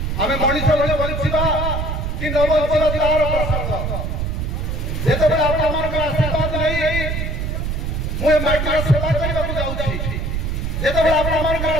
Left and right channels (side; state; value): right; noise; rumble, 2 dB below the sound